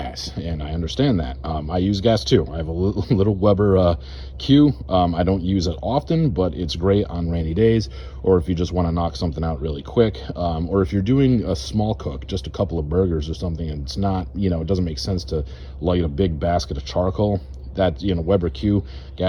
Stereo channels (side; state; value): both; identical; correlation 1.00